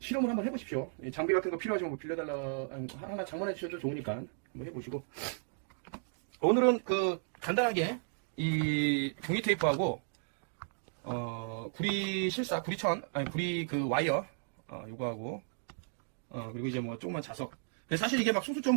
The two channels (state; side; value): silent; left; digital silence